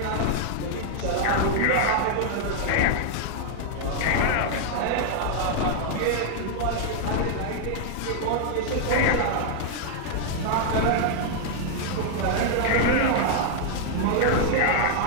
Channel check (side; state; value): both; different; correlation -0.01